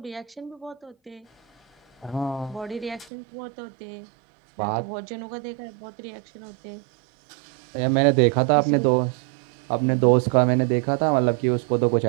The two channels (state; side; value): drops out; left; at 3.1 s